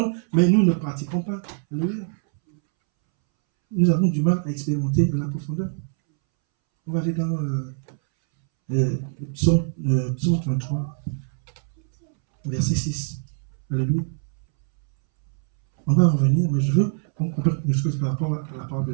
mais nous ne pratiquons pas. Nous avons du mal à expérimenter la profondeur. On va aller dans psaume 33, verset 6. Alléluia. On va revenir, mais je veux qu'on comprenne quelque chose par rapport à la parole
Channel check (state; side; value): silent; left; 63 dB below the other